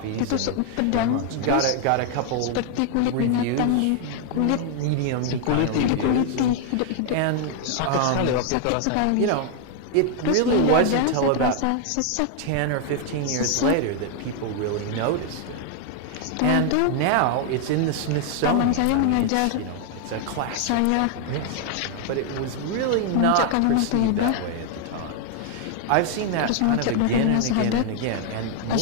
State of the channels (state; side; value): different; both; correlation 0.00